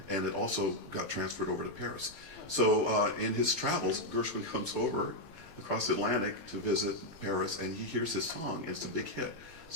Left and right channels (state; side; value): late; right; 20 ms